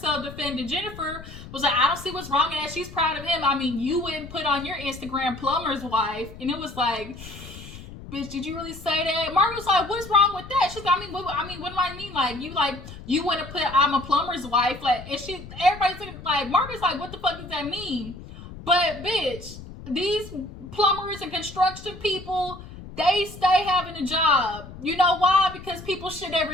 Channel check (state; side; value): noise; left; rumble, 14 dB below the sound